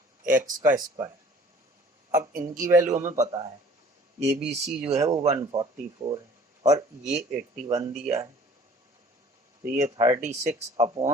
एक्स का स्क्वायर। अब इनकी वैल्यू हमें पता है, ए बी सी जो है वो 144 है और ये 81 दिया है, तो ये 36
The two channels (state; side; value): normal; both; correlation 0.50